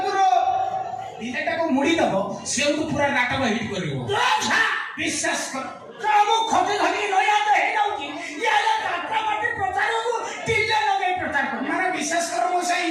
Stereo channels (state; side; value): identical; both; correlation 1.00